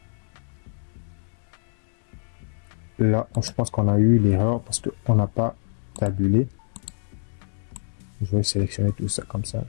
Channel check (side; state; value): right; silent; digital silence